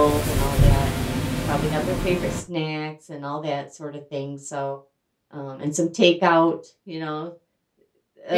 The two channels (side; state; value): both; identical; correlation 1.00